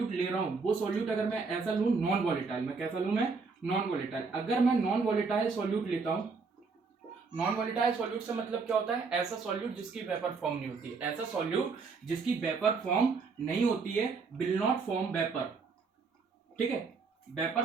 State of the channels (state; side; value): quieter; left; 4.7 dB